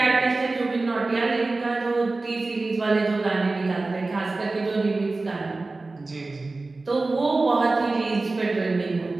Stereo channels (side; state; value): left; quieter; 3.4 dB